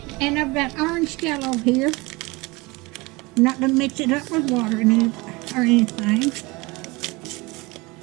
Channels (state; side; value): quieter; left; 24.1 dB